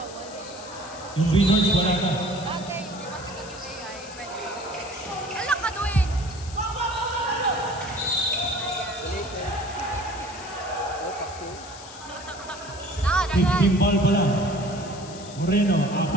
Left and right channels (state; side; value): noise; left; hiss, 16 dB below the sound